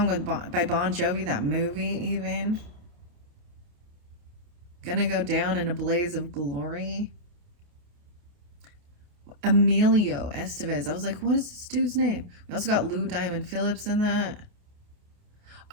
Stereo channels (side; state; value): left; late; 28 ms